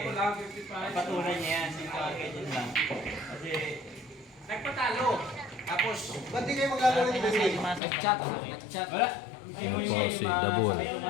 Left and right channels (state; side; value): drops out; right; at 7.8 s